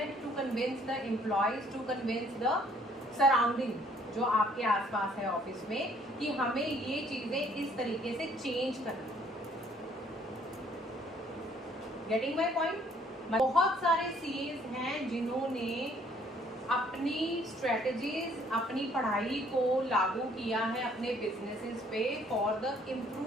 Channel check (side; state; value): both; normal; correlation 0.62